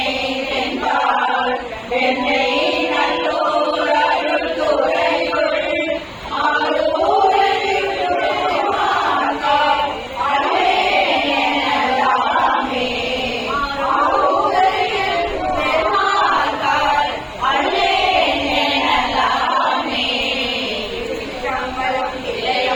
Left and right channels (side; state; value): both; identical; correlation 1.00